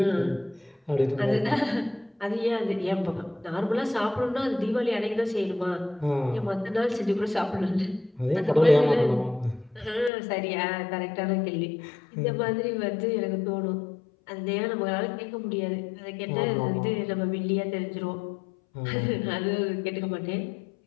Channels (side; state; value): right; drops out; at 10.1 s